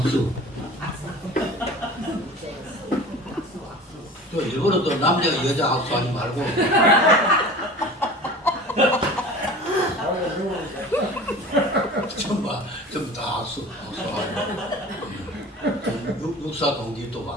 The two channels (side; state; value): both; normal; correlation 0.39